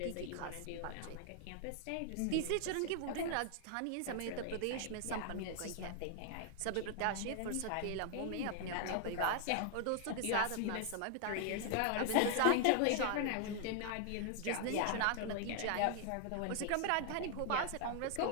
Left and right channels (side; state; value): both; different; correlation 0.00